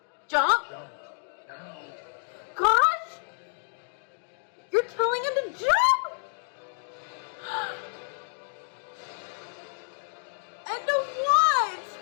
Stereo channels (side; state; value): right; silent; digital silence